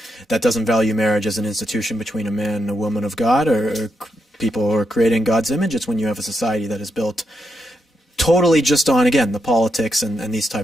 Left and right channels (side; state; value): both; normal; correlation 0.83